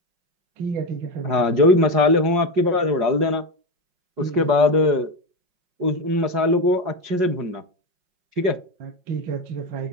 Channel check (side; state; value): left; late; 5.5 ms